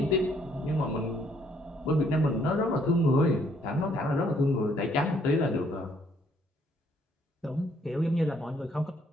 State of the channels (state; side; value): normal; both; correlation 0.67